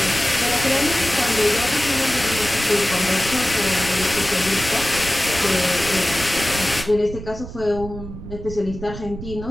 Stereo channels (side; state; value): right; noise; rumble, 11 dB below the sound